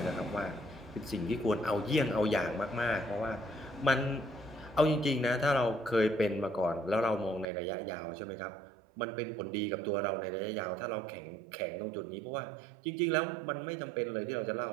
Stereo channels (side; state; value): left; drops out; at 7.5 s